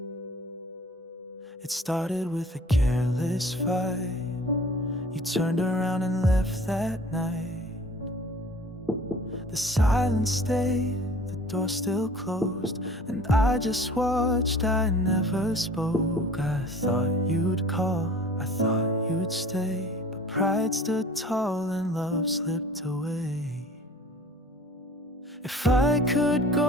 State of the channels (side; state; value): both; normal; correlation 0.47